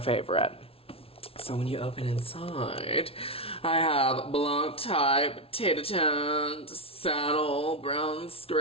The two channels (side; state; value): right; late; 0.27 ms